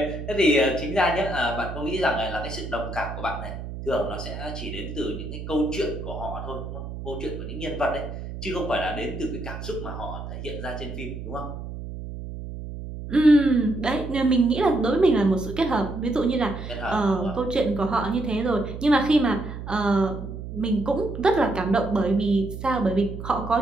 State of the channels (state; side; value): noise; right; hum, 9 dB below the sound